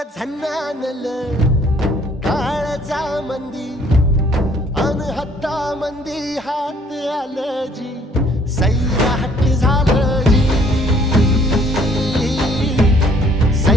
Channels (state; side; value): normal; both; correlation 0.60